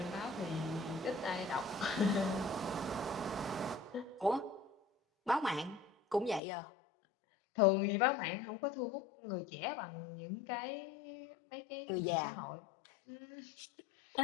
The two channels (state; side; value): drops out; right; at 6.4 s